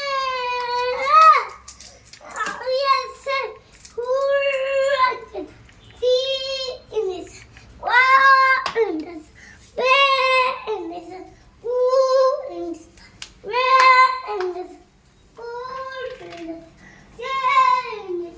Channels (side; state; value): both; identical; correlation 1.00